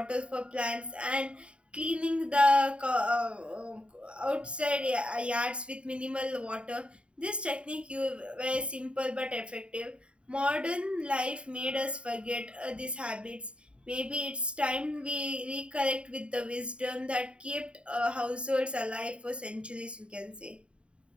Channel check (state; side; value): late; left; 0.056 ms